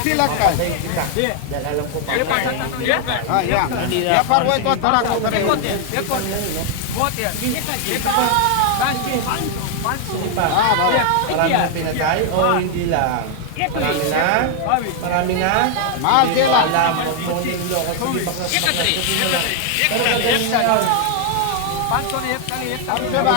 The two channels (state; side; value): different; both; correlation 0.00